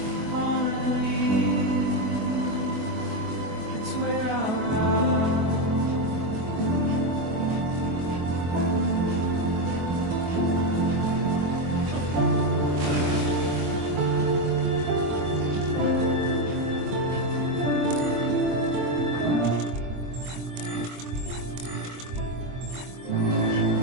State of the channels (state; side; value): late; left; 24 ms